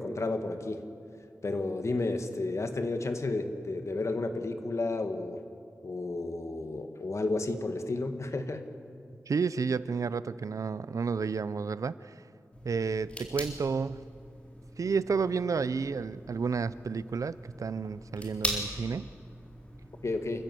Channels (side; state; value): both; normal; correlation 0.80